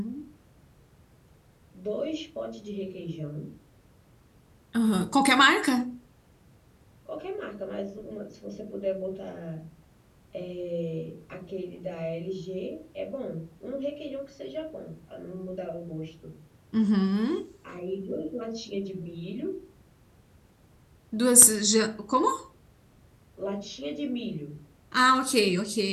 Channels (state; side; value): identical; both; correlation 1.00